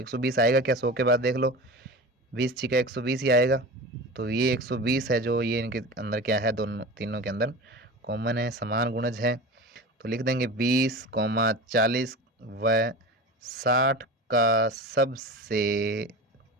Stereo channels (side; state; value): both; normal; correlation 0.31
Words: आएगा क्या, 100 के बाद देख लो, 20 छिका 120 ही आएगा, तो ये 120 है जो ये इनके अंदर क्या है, दोनों तीनों के अंदर कॉमन है, समान गुणज है। तो लिख देंगे 20, 40 व 60 का सबसे